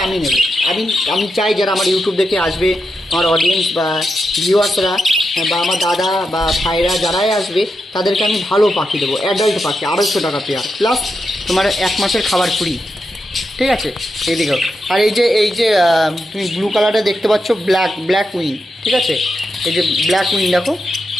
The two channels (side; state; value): both; normal; correlation 0.86